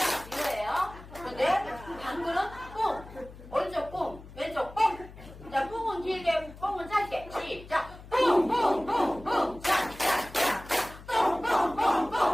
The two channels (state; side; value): noise; left; hum, 17 dB below the sound